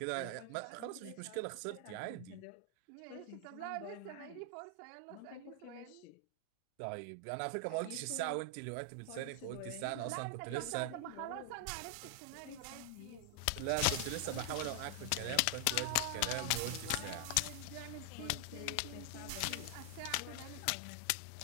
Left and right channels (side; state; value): both; different; correlation 0.00